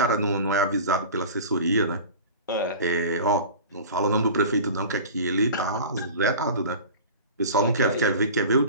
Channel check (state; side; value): inverted; both; correlation -0.37